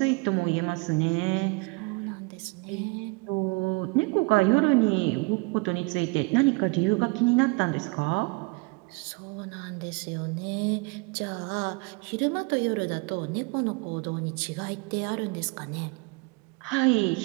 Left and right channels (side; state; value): left; quieter; 28.2 dB